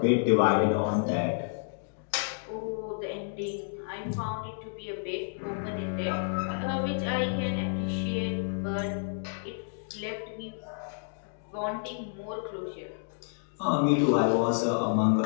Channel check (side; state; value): right; silent; digital silence